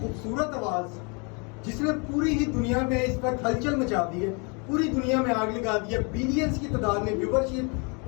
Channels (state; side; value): quieter; right; 33.0 dB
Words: आवाज जिसने पूरी ही दुनिया में इस पर हलचल मचा दी है, पूरी दुनिया में आग लगा दी है। बिलियंस की तादाद में व्यूवरशिप